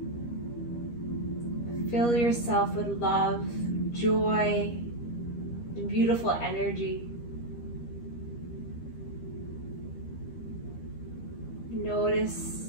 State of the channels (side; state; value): right; late; 13 ms